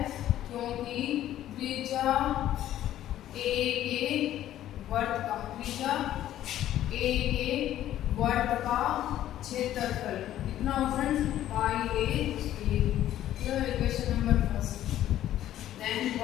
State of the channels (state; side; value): quieter; right; 12.6 dB